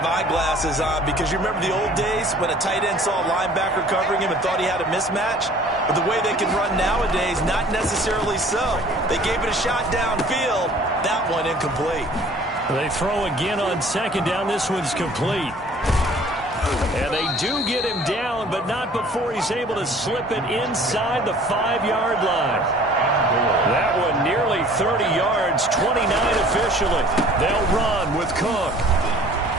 eyeglasses on because you remember the old days when a tight end saw a linebacker covering him and thought he had a mismatch? But the way they can run nowadays, not necessarily so. They gave it a shot downfield. That one incomplete. They throw again on second down. This one's complete. And they do get him down, but not before he's able to slip it inside the 5-yard line. That one nearly 30 yards, 29 officially. They'll run with Cook.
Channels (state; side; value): normal; both; correlation 0.51